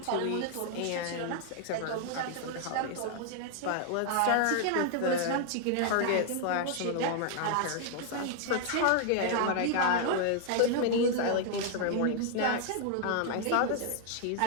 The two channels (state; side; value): different; both; correlation 0.00